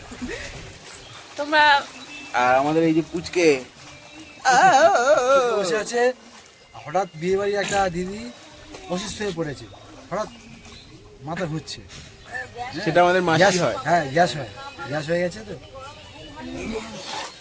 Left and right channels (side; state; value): both; identical; correlation 1.00